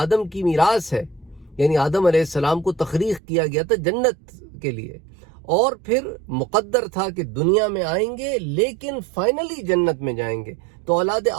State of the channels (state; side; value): drops out; left; at 3.2 s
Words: کی میراث ہے، یعنی آدم علیہ السلام کو تخلیق کیا گیا تھا جنت کے لیے، اور پھر مقدر تھا کہ دنیا میں آئیں گے لیکن فائنلی جنت میں جائیں گے۔ تو اولاد